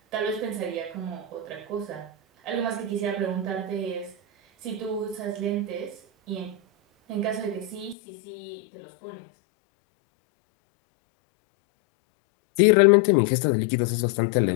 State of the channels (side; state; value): right; drops out; at 8.0 s